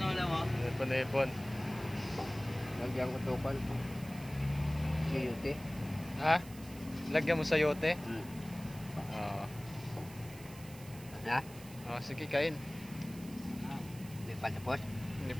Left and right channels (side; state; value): right; noise; hiss, 18 dB below the sound